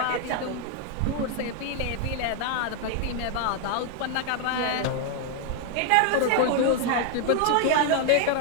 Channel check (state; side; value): different; both; correlation 0.00